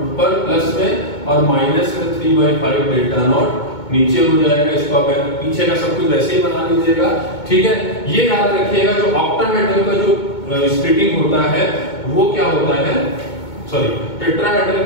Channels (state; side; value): late; right; 2.2 ms